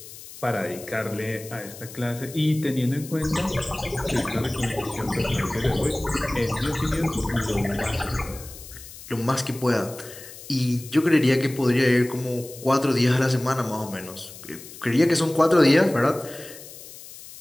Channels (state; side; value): noise; left; hiss, 16 dB below the sound